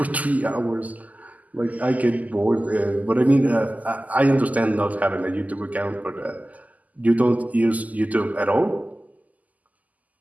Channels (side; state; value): left; late; 0.077 ms